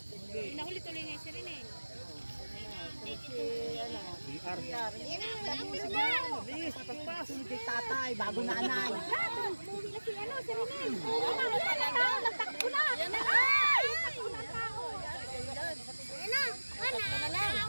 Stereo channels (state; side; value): inverted; both; correlation -1.00